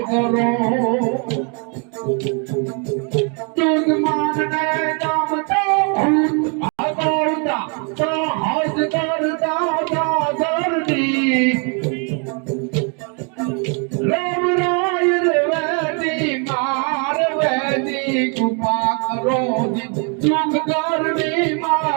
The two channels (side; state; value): left; quieter; 37.2 dB